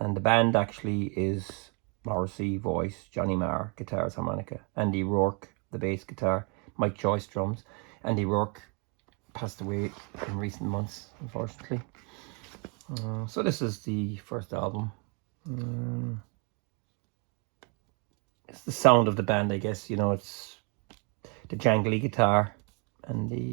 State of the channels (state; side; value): quieter; left; 36.1 dB